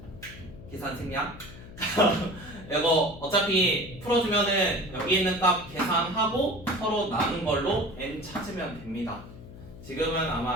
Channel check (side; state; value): left; noise; hum, 16 dB below the sound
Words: 계산 생략. 이거 어차피 풀어주면은 여기 있는 값 계산하고 서로 나눈 걸로 n 찾으면 됩니다. 지금은